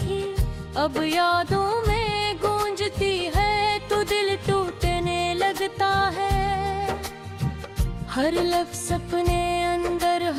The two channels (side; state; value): both; identical; correlation 1.00